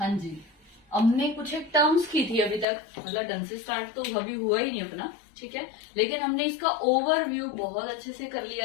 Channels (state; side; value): drops out; right; at 2.7 s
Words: जी, हमने कुछ एक टर्म्स की थी अभी तक, मतलब ढंग से स्टार्ट तो अभी हुआ ही नहीं अपना, ठीक है, लेकिन हमने इसका ओवरव्यू बहुत अच्छे से कर